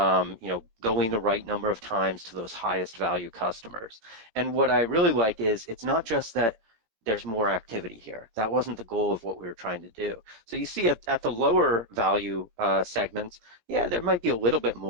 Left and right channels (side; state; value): left; late; 17 ms